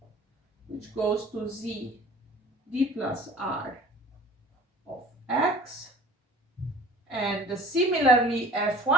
which goes to Z D plus R of X, and similarly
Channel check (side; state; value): both; normal; correlation 0.44